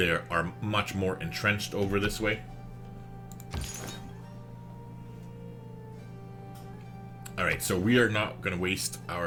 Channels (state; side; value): identical; both; correlation 1.00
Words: are much more entrenched over this way. Alright, so we are not going to waste